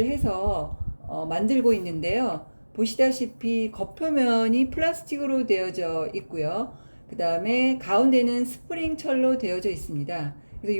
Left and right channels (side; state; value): both; inverted; correlation -1.00